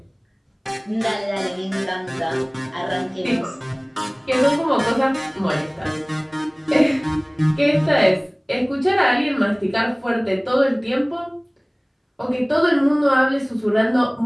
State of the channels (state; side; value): identical; both; correlation 1.00